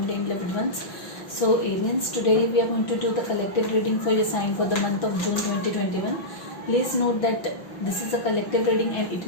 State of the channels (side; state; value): right; late; 6.1 ms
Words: and loved ones. So Arians, today we are going to do the collective reading for your sign for the month of June 2021. Please note that this is a collective reading and it